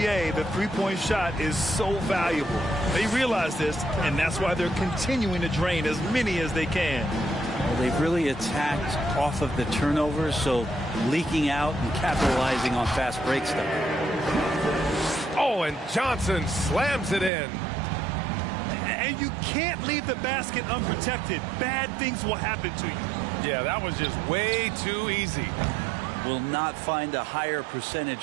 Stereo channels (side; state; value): left; drops out; at 17.3 s